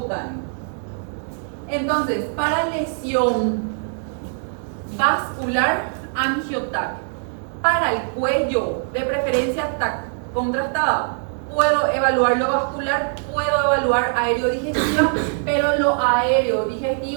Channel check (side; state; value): left; silent; 64 dB below the other